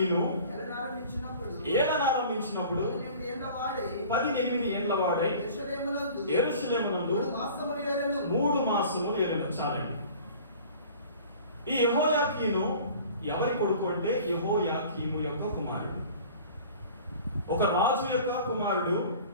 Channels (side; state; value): both; inverted; correlation -0.45